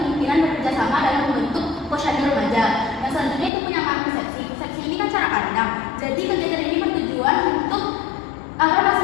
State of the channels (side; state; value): right; drops out; at 3.5 s